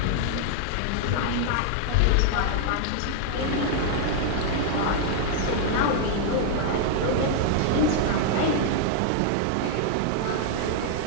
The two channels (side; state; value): both; different; correlation 0.00